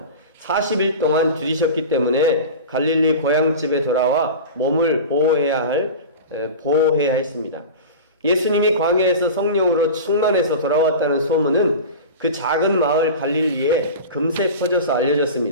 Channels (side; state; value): both; inverted; correlation -0.31